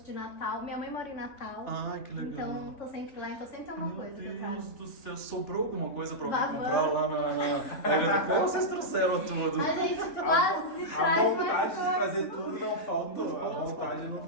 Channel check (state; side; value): late; right; 3.6 ms